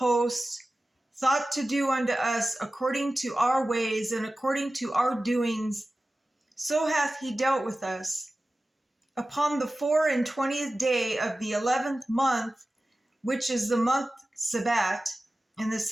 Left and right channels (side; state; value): both; normal; correlation 0.95